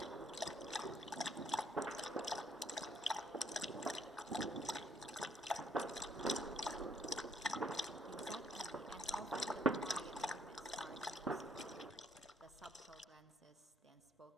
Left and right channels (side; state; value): both; normal; correlation 0.68